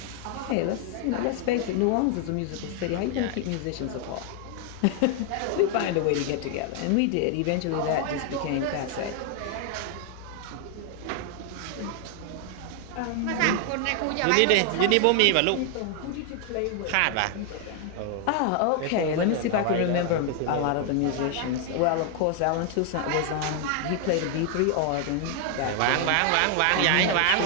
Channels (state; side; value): different; both; correlation 0.00